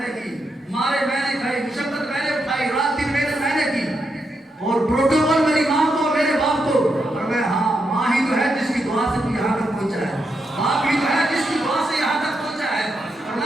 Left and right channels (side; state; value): both; normal; correlation 0.83